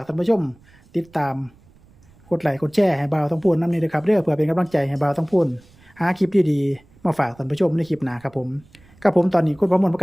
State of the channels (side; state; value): right; noise; rumble, 28 dB below the sound